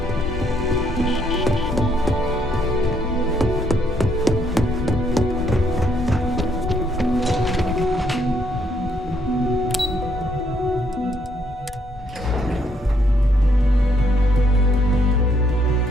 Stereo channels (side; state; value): both; normal; correlation 0.71